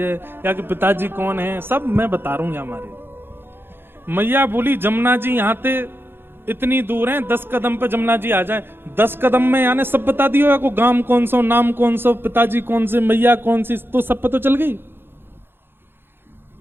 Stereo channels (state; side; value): late; left; 0.10 ms